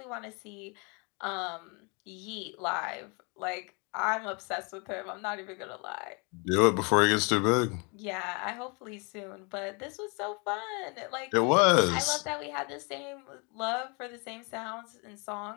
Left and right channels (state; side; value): quieter; right; 32.4 dB